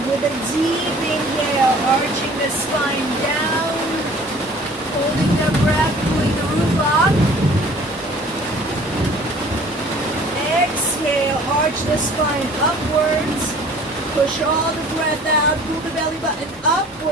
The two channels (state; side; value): normal; both; correlation 0.50